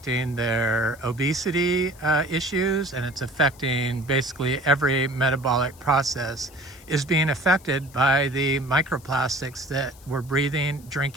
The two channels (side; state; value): left; noise; hiss, 24 dB below the sound